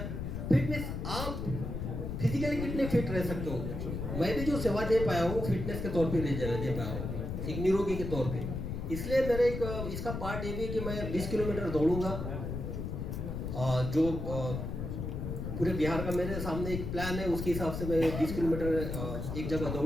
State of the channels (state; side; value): noise; left; rumble, 4 dB below the sound